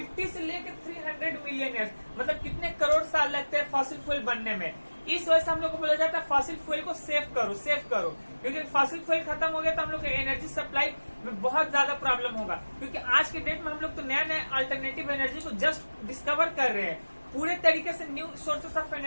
से लेकर 300 मिलियन ईयर्स मतलब कितने करोड़ साल लगते हैं फॉसिल फ्यूल बनने में। इस वजह से हम लोग को बोला जाता है फॉसिल फ्यूल को सेव करो, क्योंकि फॉसिल फ्यूल खत्म हो गया तो हम लोग एनर्जी सप्लाई में बहुत ज्यादा प्रॉब्लम होगा। क्योंकि आज के डेट में हम लोग तो नया नया अल्टरनेटिव एनर्जी को जस्ट डिस्कवर कर रहे हैं, पूरे तरीके से न्यू सोर्सेस ऑफ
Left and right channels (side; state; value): both; inverted; correlation -1.00